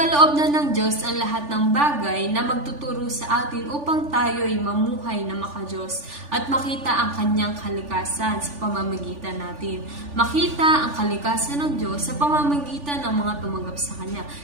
na ng Diyos ang lahat ng bagay na magtuturo sa atin upang tayo ay mamuhay na makadiyos at makita ang kanyang kalikasan sa pamamagitan natin. Makita ang kalikasan ng Diyos sa pamamagitan ng mga tumanggap sa Kanya,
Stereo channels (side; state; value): left; late; 3.4 ms